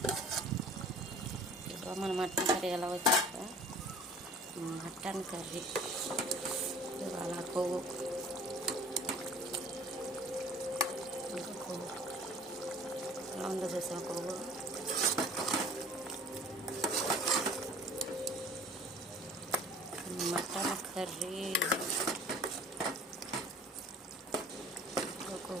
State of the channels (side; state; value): both; normal; correlation 0.47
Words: మన మటన్ కర్రీ ఎలా వచ్చాక మటన్ కర్రీ ఇవాళ కొవ్వు ఇంకా కొవ్వు ఎలా ఉందో చూసాం. కొవ్వు మటన్ కర్రీ